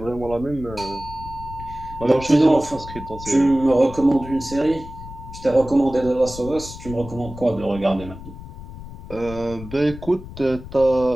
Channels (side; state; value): left; noise; rumble, 13 dB below the sound